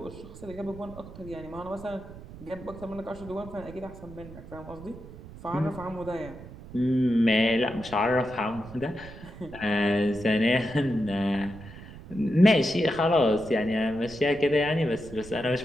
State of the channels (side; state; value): right; noise; rumble, 15 dB below the sound